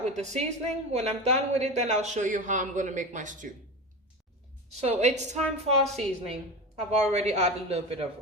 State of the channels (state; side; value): normal; both; correlation 0.25